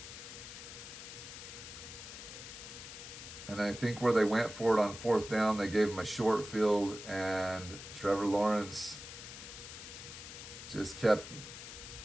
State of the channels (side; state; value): left; noise; hiss, 12 dB below the sound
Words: And I think where they went for it on fourth down, they gave him a short field, and Trevor Lawrence just kept